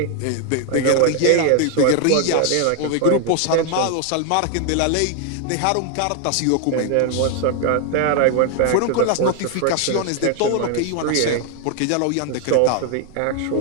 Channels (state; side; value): different; both; correlation 0.01